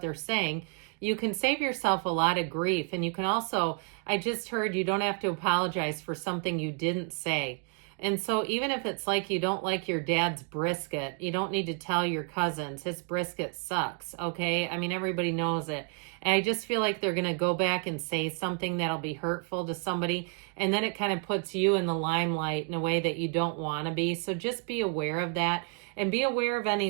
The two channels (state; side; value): quieter; left; 38.9 dB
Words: they're saying, you can save yourself a lot of grief. And you can also, I just heard, you don't have to apologize for something you didn't say. And so even if it's like you don't like your dad's brisket, you don't need to tell your cousins his brisket sucks, okay? I mean, everybody knows it. And I just feel like they're going to go back and say something that'll be hurtful to somebody, and then it kind of puts you in the limelight in a way that you don't want to be. So just be aware of that, and be aware of